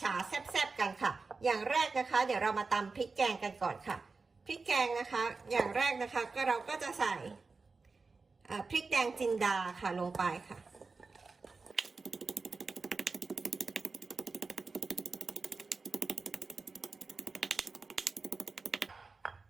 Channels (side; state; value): left; quieter; 4.2 dB